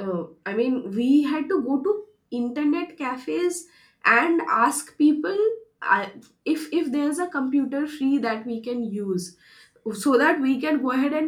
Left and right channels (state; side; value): identical; both; correlation 1.00